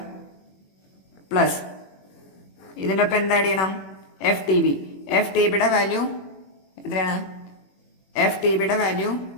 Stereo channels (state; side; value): late; right; 21 ms